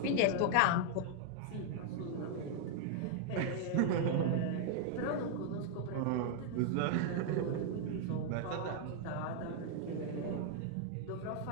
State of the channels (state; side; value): different; both; correlation 0.00